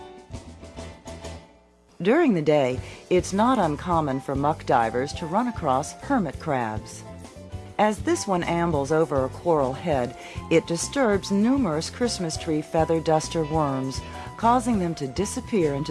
During the day, it's not uncommon for muck divers to run across hermit crabs. As this one ambles over a coral head, it disturbs numerous Christmas tree feather duster worms, causing them to disappear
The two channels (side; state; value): both; identical; correlation 1.00